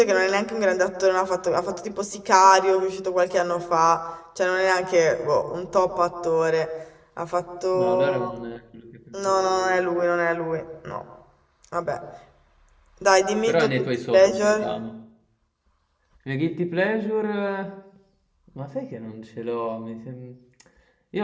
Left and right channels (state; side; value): identical; both; correlation 1.00